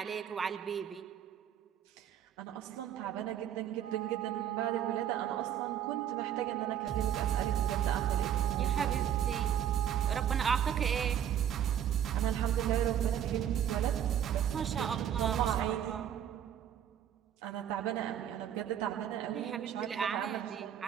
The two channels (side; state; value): left; quieter; 9.8 dB